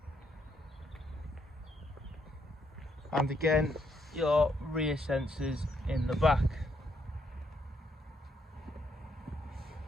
and again your rear sensors in the back.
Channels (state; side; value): normal; both; correlation 0.74